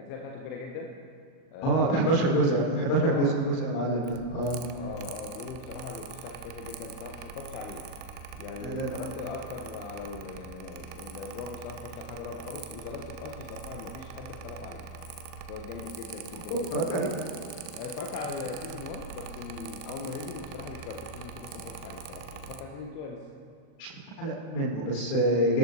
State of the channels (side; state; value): right; late; 38 ms